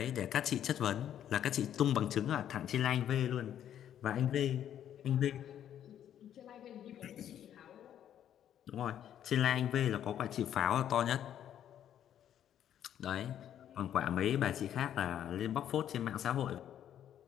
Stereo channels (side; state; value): right; quieter; 10.3 dB